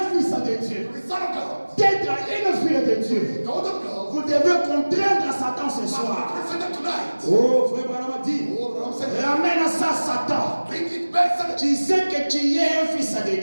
fils de Dieu, to be son of God, d'être une fille de Dieu. daughter of God. Vous devez contraindre Satan ce soir. Present tonight. Oh, frère Branham a dit, Oh, but I'm saying, ramène ça Satan. bring it back, Satan. Tu sais que tu es un fils de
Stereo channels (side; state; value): both; inverted; correlation -1.00